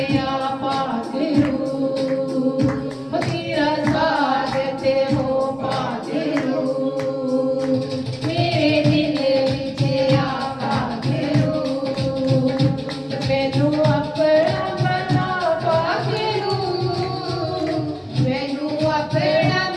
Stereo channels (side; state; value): both; identical; correlation 1.00